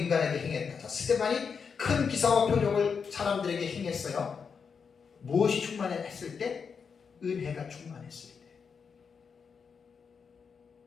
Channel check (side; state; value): right; quieter; 6.0 dB